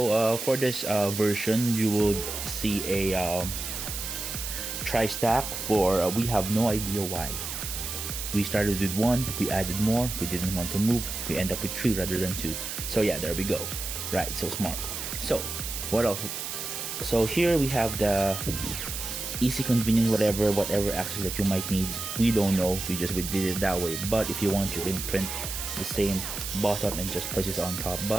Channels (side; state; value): right; noise; hiss, 5 dB below the sound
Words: for this version, you will see a tri-stack for we have no idea why. We started with 1, we added more, we didn't want to move, we end up with 3 rather than 2. So yeah, there we go. Right, so smart. So what else? So here we have the easy, convenient, whatever access that you might need. We don't know, we did it that way. But if you want, you can print the same bottom and just place it on top.